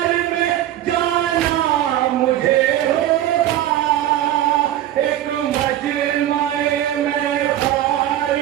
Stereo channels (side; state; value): left; quieter; 12.6 dB